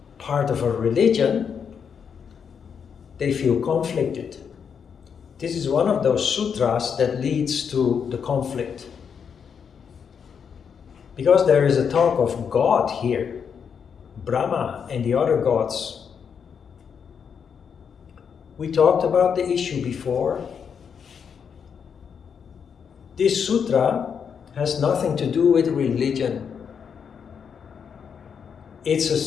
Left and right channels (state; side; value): quieter; right; 6.9 dB